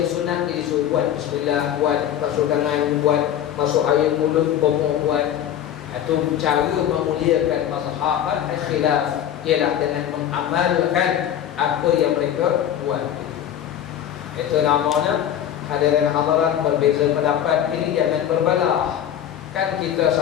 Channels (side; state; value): right; quieter; 10.3 dB